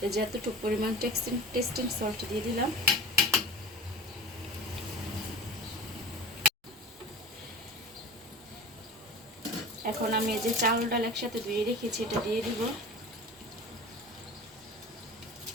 এই যে এতটুকু পরিমাণ টেস্টিং সল্ট দিয়ে দিলাম। এখন আমি এই যে চাউল ডাল একসাথে ধুয়ে রেখেছি এটা দিয়ে দিব।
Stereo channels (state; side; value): normal; both; correlation 0.37